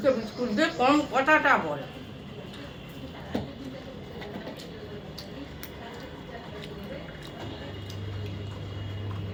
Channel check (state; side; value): identical; both; correlation 1.00